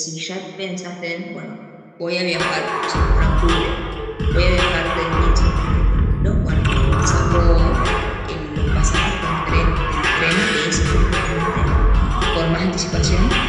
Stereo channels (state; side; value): identical; both; correlation 1.00